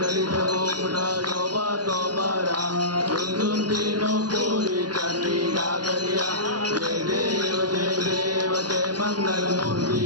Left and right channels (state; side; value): late; left; 0.70 ms